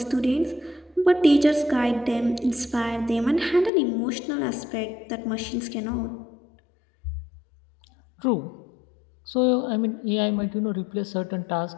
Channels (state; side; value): drops out; right; at 3.7 s